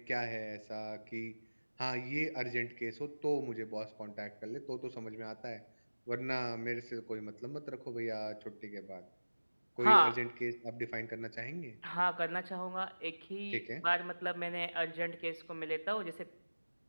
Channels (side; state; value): both; inverted; correlation -1.00